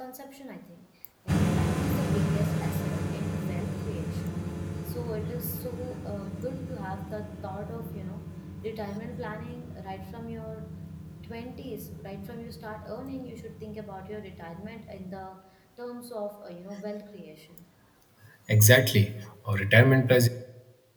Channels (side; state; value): both; identical; correlation 1.00